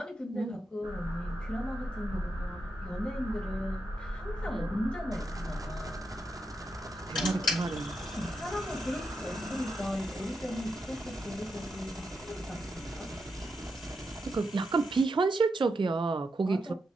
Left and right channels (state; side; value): normal; both; correlation 0.85